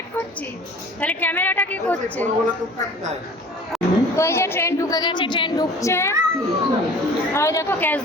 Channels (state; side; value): normal; both; correlation 0.45